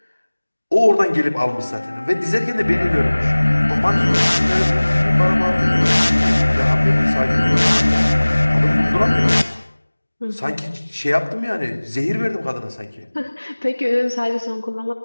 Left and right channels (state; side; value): inverted; both; correlation -1.00